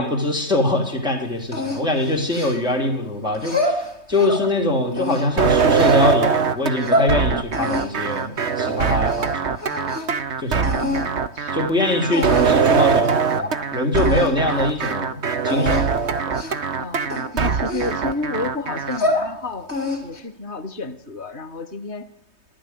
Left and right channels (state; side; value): late; left; 3.2 ms